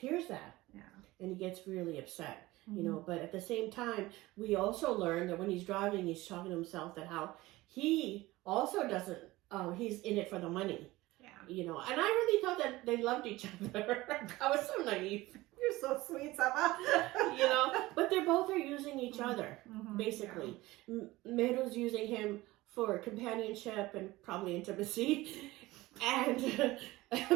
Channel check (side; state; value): left; quieter; 19.1 dB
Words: that. Yeah. And he gets really upset, you know. But at the same time, we also learn that when he's driving, he's talking to himself that how he also doesn't, he's in it for the money. Yeah. You know, and I really thought that they loved each other. I was so naive. You're so sweet, Saba. You know, but they both are using each other, basically. Yeah. Meru's using him for companionship and probably intimacy. And